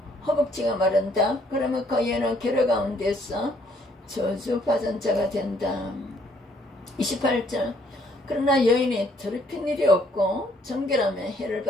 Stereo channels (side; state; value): both; normal; correlation 0.65